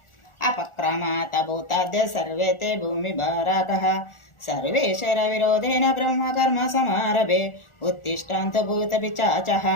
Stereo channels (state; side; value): late; right; 1.4 ms